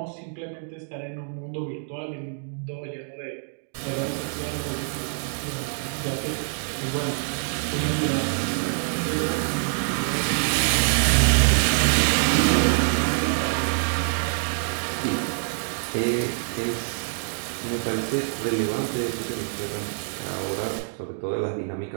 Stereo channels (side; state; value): left; silent; digital silence